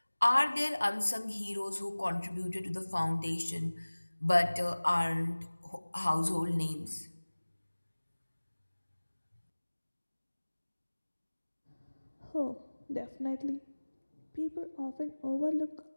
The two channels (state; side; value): inverted; both; correlation -1.00